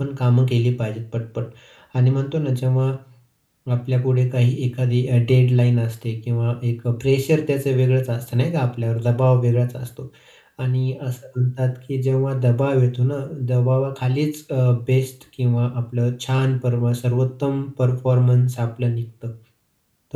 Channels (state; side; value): identical; both; correlation 1.00